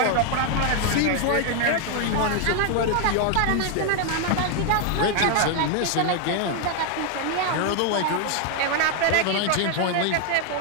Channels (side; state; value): both; different; correlation 0.00